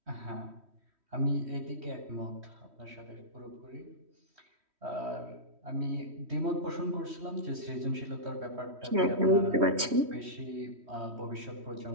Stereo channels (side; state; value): left; late; 3.1 ms